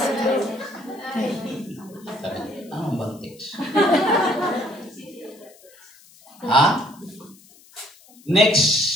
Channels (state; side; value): noise; left; hiss, 26 dB below the sound